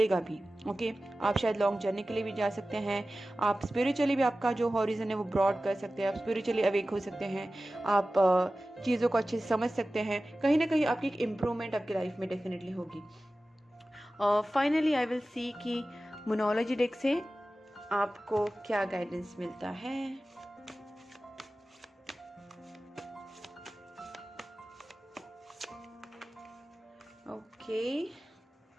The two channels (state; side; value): normal; both; correlation 0.96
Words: भी। ओके, आप शायद लॉन्ग जर्नी के लिए भी जा सकते हैं। आप स्पिरिचुअली भी आपका जो हॉरिजन है वो ब्रॉड कर सकते हैं। आप स्पिरिचुअली अवेक हो सकते हैं। आप चीज़ों को अच्छे से समझ सकते हैं। कहीं ना कहीं आपकी एक इम्प्रूवमेंट आपकी लाइफ में डेफिनेटली होगी। फाइनली आई विल सी कि मोनोलॉजी डेक से आपको क्या गाइडेंस मिलता है। Okay,